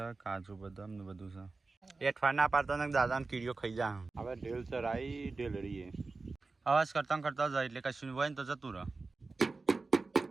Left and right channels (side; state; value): left; quieter; 3.8 dB